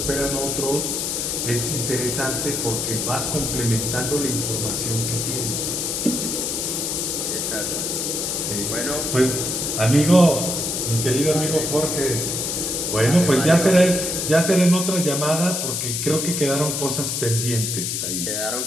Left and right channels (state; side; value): noise; left; hiss, 1 dB below the sound